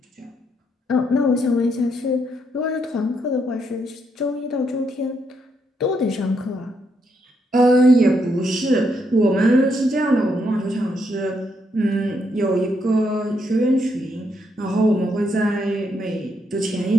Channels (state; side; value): normal; both; correlation 0.77